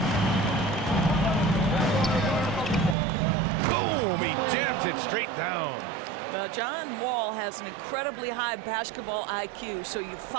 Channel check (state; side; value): drops out; left; at 3.0 s